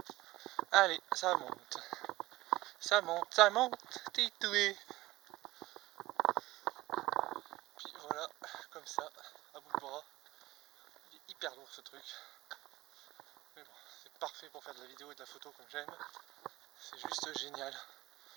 Allez, ça monte. Ça monte, ça monte. Titoué. Puis voilà, comme ça, à bout de bras. Il est hyper lourd ce truc. Mais bon, c'est parfait pour faire de la vidéo et de la photo comme j'aime. C'est juste génial.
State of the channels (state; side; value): quieter; left; 18.3 dB